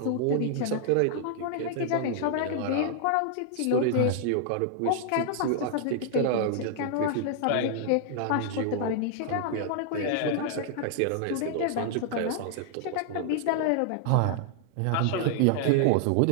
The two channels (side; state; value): both; different; correlation 0.00